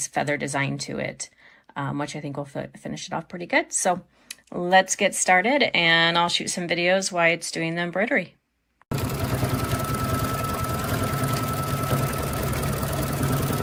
feather design to it, which I think will finish it off pretty good. So let's get started, and I'll shoot some videos while it's doing the embroidery.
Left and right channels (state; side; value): identical; both; correlation 1.00